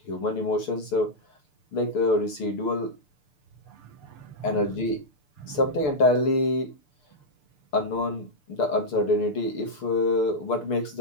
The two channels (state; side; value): late; right; 6.8 ms